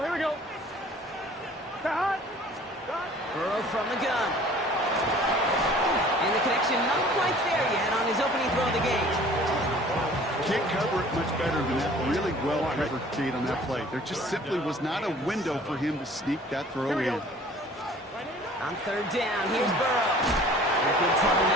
we go. Cut. Burrow from the gun. And the connection not quite there yet on his opening throw of the game. Can't cover it much better than that. Really well covered, Kate, on that play. There just simply was not a window for him to sneak that throw in. On third down, here's Burrow. Good trouble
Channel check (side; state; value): both; normal; correlation 0.50